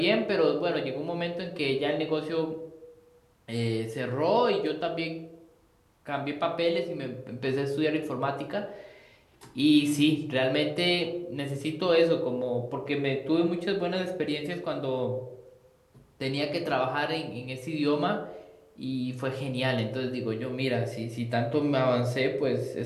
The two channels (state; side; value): identical; both; correlation 1.00